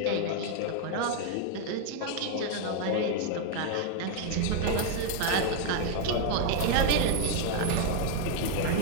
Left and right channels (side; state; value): both; different; correlation 0.00